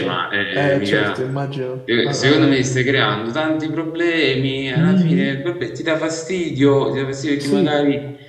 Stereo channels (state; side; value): identical; both; correlation 1.00